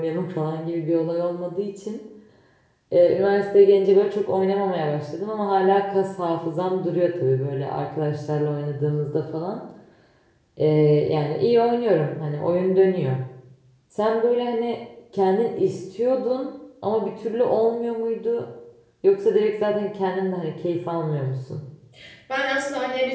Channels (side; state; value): both; identical; correlation 1.00